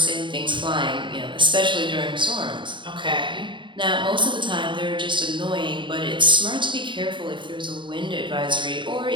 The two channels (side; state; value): left; late; 0.23 ms